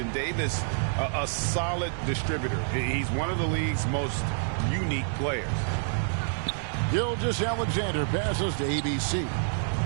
Davis, a solid distributor. He's one of the league's most unique players. Gilgeous-Alexander passes to ABC.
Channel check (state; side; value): silent; left; 59 dB below the other